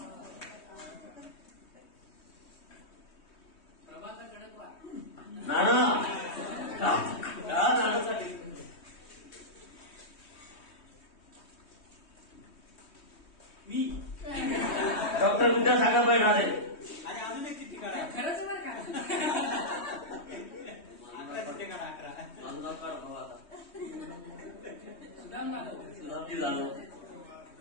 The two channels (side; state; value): right; late; 3.2 ms